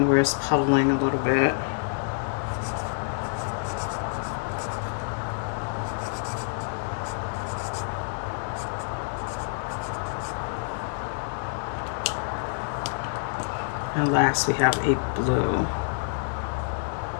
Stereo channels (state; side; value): silent; right; digital silence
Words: where it's puddling a little bit. And last we have a blue.